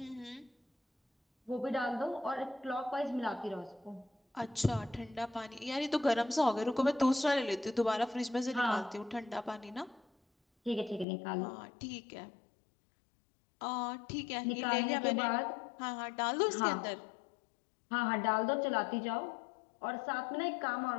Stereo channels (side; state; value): right; drops out; at 11.1 s